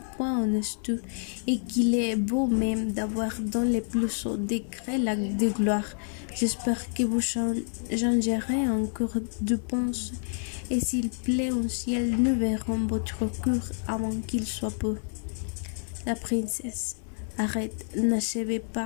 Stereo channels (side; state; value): right; silent; 56 dB below the other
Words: pas honnêtes et qu'il est beau même d'avoir dans les plus hauts degrés l'acte de gloire. J'espère que vous changerez encore de pensée et s'il plaît au ciel, nous verrons votre cœur avant qu'il soit peu. La princesse. Arrête, n'achevez